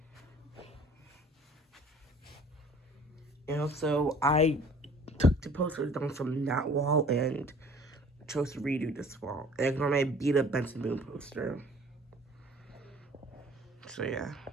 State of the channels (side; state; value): both; normal; correlation 0.51